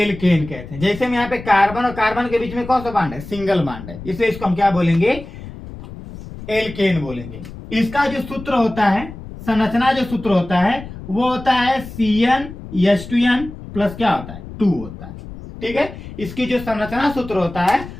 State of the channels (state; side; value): noise; left; rumble, 13 dB below the sound